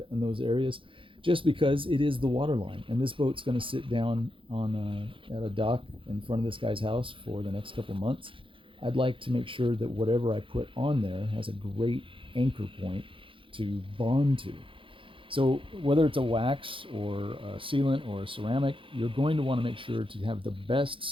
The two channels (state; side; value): late; left; 0.25 ms